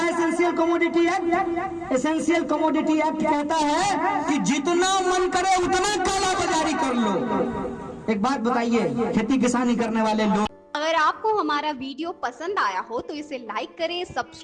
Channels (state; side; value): identical; both; correlation 1.00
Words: essential commodity act? Essential commodity act कहता है कि जितना मन करे उतना काला बाजारी कर लो। एक बात बताइए, खेती किसानी करने वाले लोग, अगर आपको हमारा वीडियो पसंद आया हो तो इसे लाइक करें,